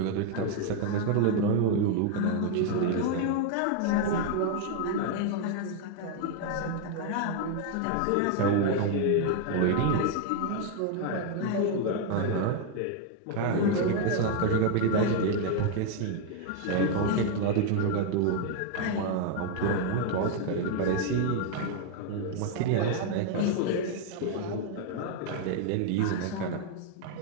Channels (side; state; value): both; different; correlation 0.01